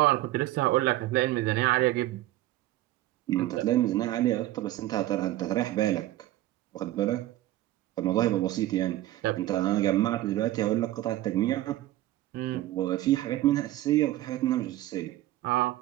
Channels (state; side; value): quieter; left; 15.4 dB